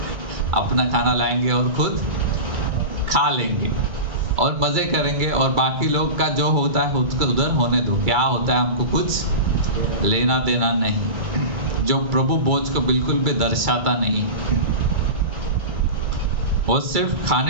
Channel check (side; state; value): left; late; 2.3 ms